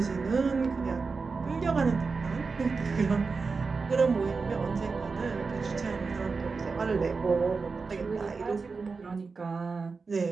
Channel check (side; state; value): left; quieter; 4.5 dB